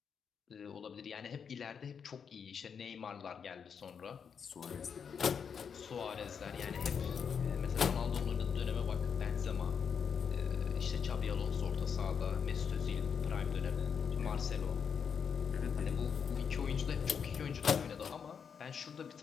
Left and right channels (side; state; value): right; quieter; 6.8 dB